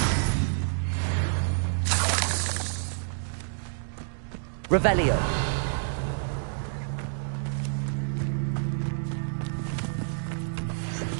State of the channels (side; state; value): left; silent; digital silence